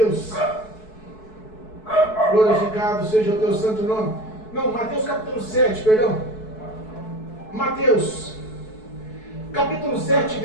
Glorificado seja o teu santo nome. Não, Mateus capítulo 7, perdão. Mateus capítulo 7,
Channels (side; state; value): right; late; 4.6 ms